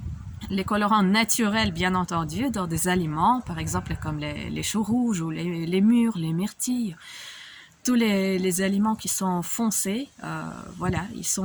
colorants naturels, bien entendu, dans des aliments, par exemple comme les choux rouges ou les mûres, les myrtilles. Tous les aliments qui sont foncés, voilà, ils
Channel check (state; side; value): identical; both; correlation 1.00